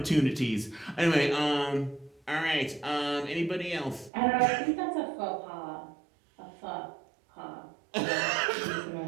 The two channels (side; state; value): left; drops out; at 4.1 s